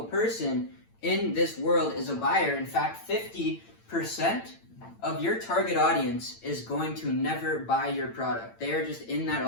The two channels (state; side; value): late; right; 8.9 ms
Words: person in this world is a buyer. In fact, 50% of your target audience is going to never buy your product. They are just in that